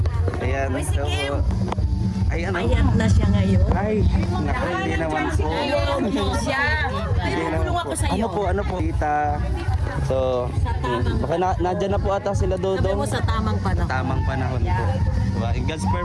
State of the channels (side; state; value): both; identical; correlation 1.00